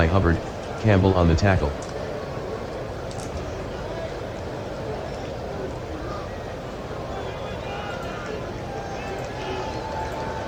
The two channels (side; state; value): both; identical; correlation 1.00